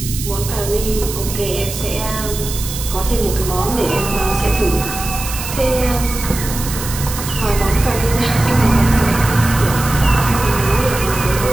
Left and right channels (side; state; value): right; noise; hiss, 8 dB below the sound